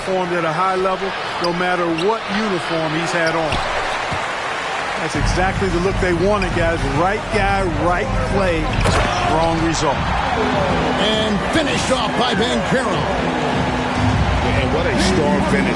at a high level no matter what uniform he's had on. That's exactly the look they wanted, guys. Right guy, right play, wrong result. And finished off by Banchero. And what a strong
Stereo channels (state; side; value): identical; both; correlation 1.00